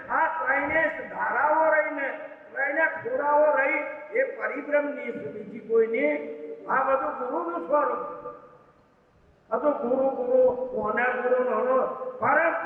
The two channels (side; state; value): both; identical; correlation 1.00